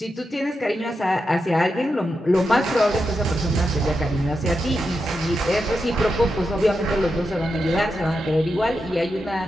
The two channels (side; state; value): both; normal; correlation 0.87